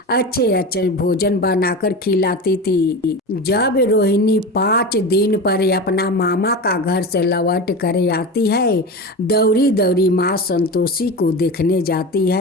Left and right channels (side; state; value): both; normal; correlation 0.26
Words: अच्छे अच्छे भोजन बनाकर खिलाती थी। जब रोहिणी 5 दिन पर अपना मामा का घर से लौट कर आती है, दौड़ी दौड़ी माँ संतोषी को देखने जाती